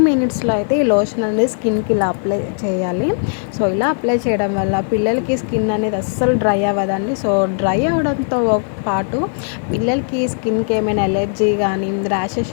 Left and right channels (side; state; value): right; silent; digital silence